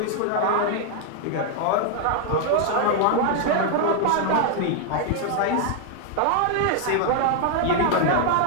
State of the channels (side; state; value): both; different; correlation 0.00